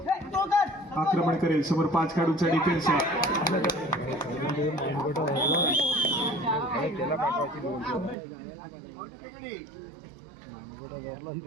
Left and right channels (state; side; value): drops out; left; at 8.2 s